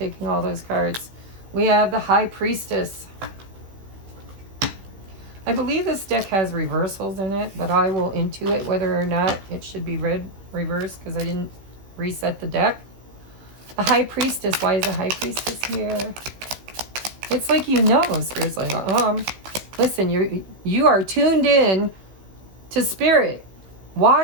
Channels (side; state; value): left; late; 16 ms